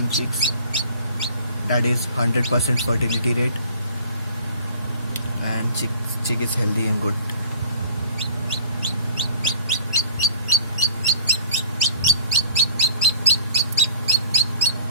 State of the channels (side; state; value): both; inverted; correlation -0.49